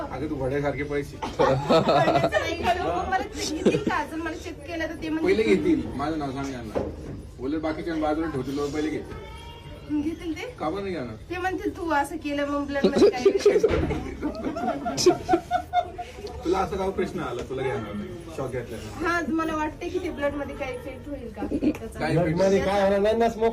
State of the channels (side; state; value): both; identical; correlation 1.00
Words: तू वड्यासारखे पैसे पडण्याचं नाही हो. मला घेतील का अजून मला चेक केलं तर ते पहिले घेतील. माझं नाव सांग यांना. बोलले बाकीच्या बाजूला ठेवतील लोक पहिले घेतील. घेतील ते का पण नाही घेणार? ते म्हणतील तू असं केलं मग ब्लड मध्ये काय तुला असं काय प्रश्न आला तुला घेणार नाही शॉक घेतला हा मला वाटते की ते ब्लड मध्ये काही इफेक्ट होईल का त्याचा. काय ब्लड मध्ये काय होणार नाही ना,